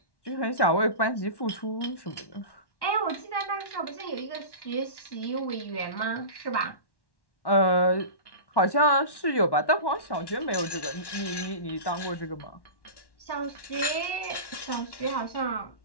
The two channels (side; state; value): right; late; 1.1 ms